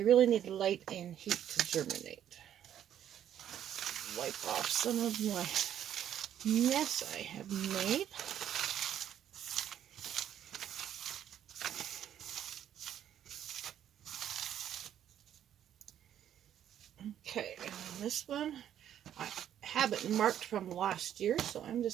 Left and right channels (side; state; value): left; quieter; 10.4 dB